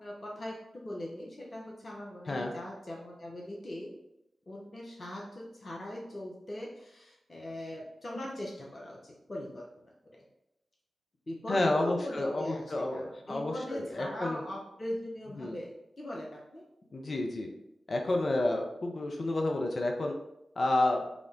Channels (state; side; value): normal; both; correlation 0.95